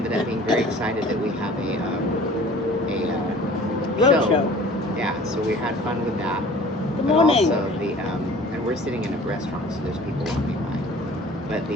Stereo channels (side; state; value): both; normal; correlation 0.47